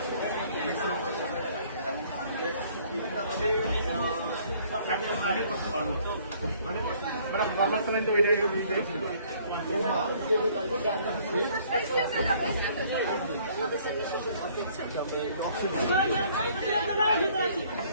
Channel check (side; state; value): both; inverted; correlation -0.60